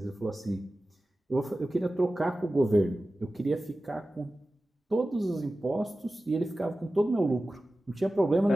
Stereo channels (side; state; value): both; normal; correlation 0.95